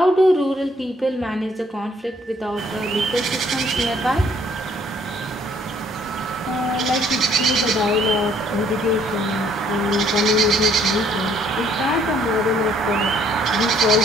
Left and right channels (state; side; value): normal; both; correlation 0.64